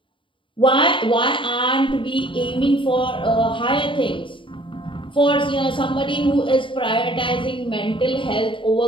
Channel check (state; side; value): late; right; 0.25 ms